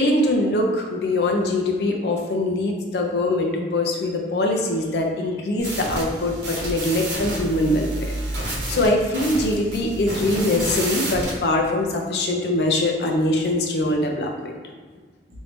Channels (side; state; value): both; normal; correlation 0.37